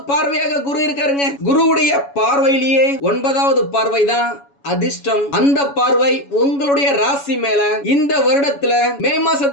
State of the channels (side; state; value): right; late; 7.1 ms